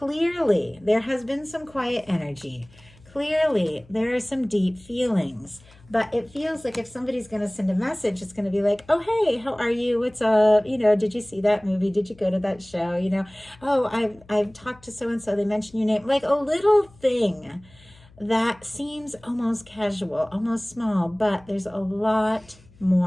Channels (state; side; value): noise; left; hum, 26 dB below the sound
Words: there has been some quiet energy. Clearly, there are some deep feelings. But it feels like if somebody's going to send a message, it's going to be like, oh, hey, how are you? What's up? You know, did you see that movie? Did you go to that show? You know, oh, I've talked to so-and-so. They mentioned your name. Like a little thing that seems almost casual, almost small, but there's a lot